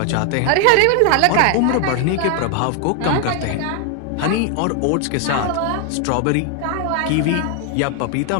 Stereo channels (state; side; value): different; both; correlation 0.00